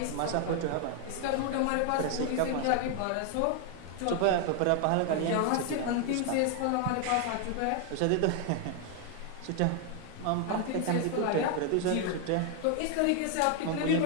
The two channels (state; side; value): different; both; correlation 0.00